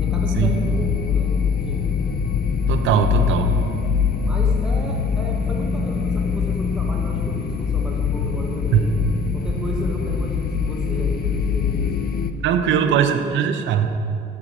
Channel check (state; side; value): normal; both; correlation 0.49